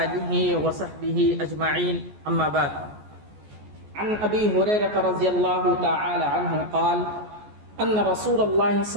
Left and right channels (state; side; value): late; left; 14 ms